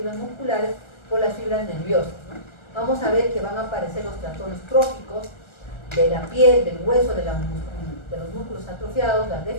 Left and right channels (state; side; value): late; right; 1.3 ms